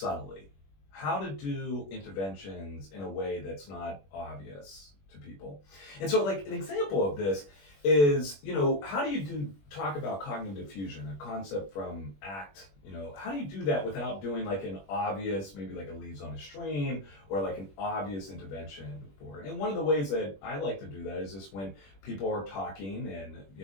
How to do interventions in a way that's not obvious to people. And so like an example of this is, how do you talk about cognitive fusion, a concept from ACT? How do you do that without doing like an obvious, maybe like a leaves on a stream or like an obvious intervention for it? And one of the ways that I like to do that is just when people are talking and,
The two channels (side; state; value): right; late; 21 ms